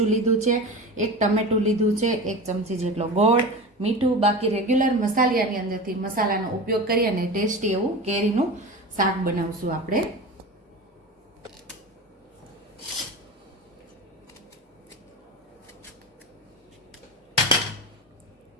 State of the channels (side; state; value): both; normal; correlation 0.29